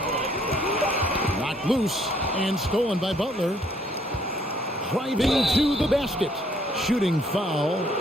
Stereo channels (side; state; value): both; normal; correlation 0.65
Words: Knocked loose and stolen by Butler. Driving to the basket. Shooting foul